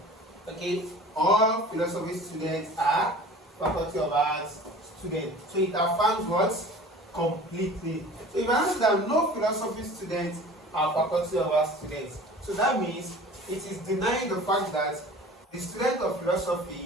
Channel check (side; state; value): both; normal; correlation 0.43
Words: Okay, all philosophy students are Faculty of Arts students. So it affirms what? Completely. So if I answer that no philosophy students are Faculty of Arts students, so that means it is denying the fact that the students of